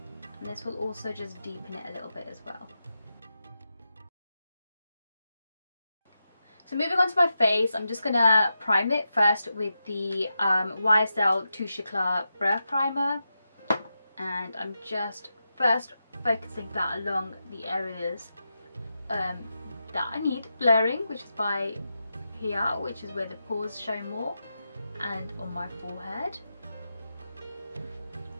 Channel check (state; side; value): inverted; both; correlation -0.89